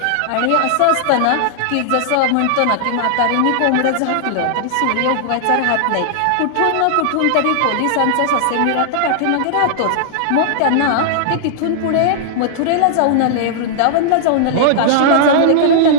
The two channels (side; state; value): both; different; correlation -0.01